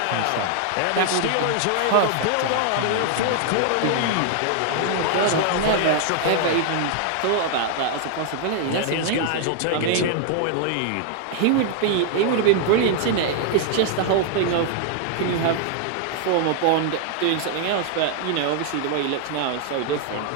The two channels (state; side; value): different; both; correlation 0.00